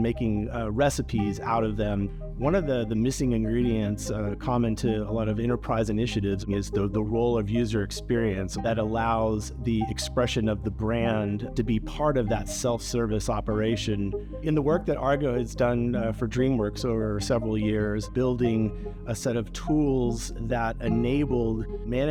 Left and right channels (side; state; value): both; identical; correlation 1.00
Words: making recipes out of them. One of the missing ingredients common to a lot of enterprise initiatives is the role of user experience that allows the expression of the brand to be part of that self-service operation. In the work that Argo has done for DreamWorks over several years, building a set of tools that enabled